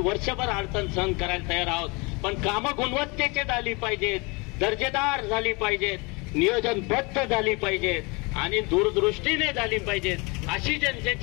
वर्षभर अडचण सहन करायला तयार आहोत. पण कामं गुणवत्तेची झाली पाहिजेत, दर्जेदार झाली पाहिजेत, नियोजनबद्ध झाली पाहिजेत आणि दूरदृष्टीने झाली पाहिजेत, अशी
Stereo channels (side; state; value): right; quieter; 28.2 dB